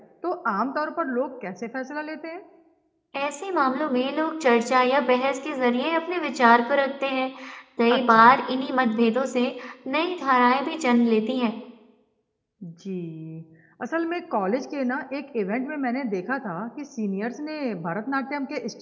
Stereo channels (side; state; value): both; identical; correlation 1.00